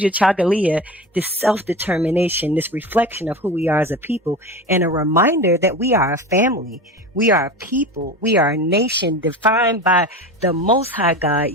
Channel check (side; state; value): both; normal; correlation 0.29